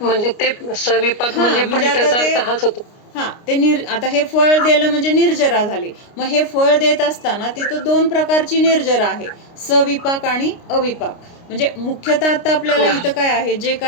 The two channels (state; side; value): late; right; 29 ms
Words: म्हणजे ते सविपाक हा, म्हणजे पण म्हणजे आता त्याचा ते अर्थ हाच होतो. हा ते आता हे फळ दिलं म्हणजे निर्जरा झाली. मग हे फळ देत असताना तिथं दोन प्रकारची निर्जरा आहे, सविपाक आणि अविपाक. म्हणजे मुख्यतः आता आपल्याला इथं काय आहे, जे